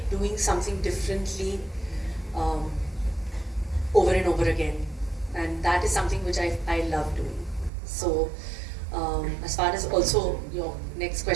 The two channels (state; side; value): drops out; left; at 7.7 s